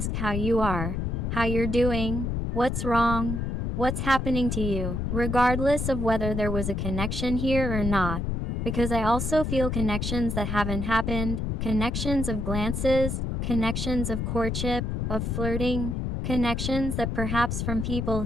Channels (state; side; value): noise; left; rumble, 1 dB below the sound